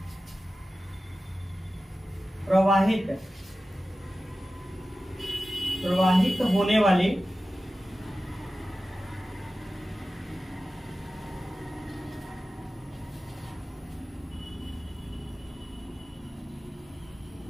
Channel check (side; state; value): both; normal; correlation 0.94